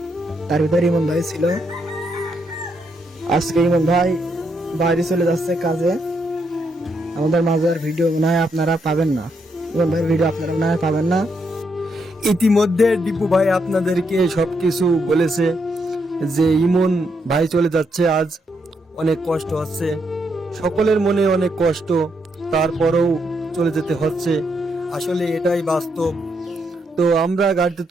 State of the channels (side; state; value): both; normal; correlation 0.78